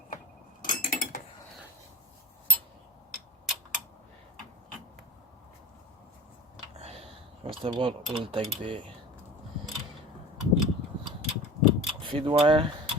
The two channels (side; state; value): both; normal; correlation 0.37